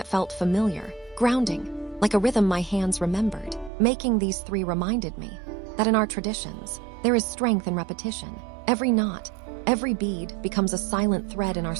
felt familiar, grounding, like a rhythm my hands remembered. Making these 3 reminded me that in our traditions, there is strength in repetition. Every knot, every bead becomes a silent thread in our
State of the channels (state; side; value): drops out; left; at 3.7 s